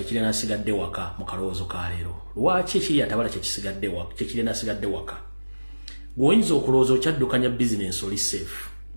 kiri nasigadde waka mu kaloozo ka leero. Lwaki ekiri atabala kye kisigadde waka kye kiri nasigadde waka? Oyinza okulowooza okyaddukanya business oli safe.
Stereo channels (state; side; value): inverted; both; correlation -1.00